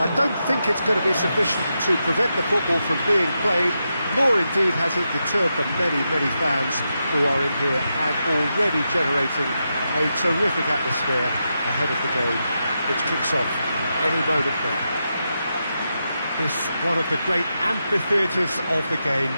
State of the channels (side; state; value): both; inverted; correlation -0.86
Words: I don't think it's going to be sufficient to prevent the football from being played, nor indeed has it deterred the many, many fans who are in here and already generating a terrific atmosphere ahead of the game, which kicks off any moment now. This one of the great amphitheatres of the game.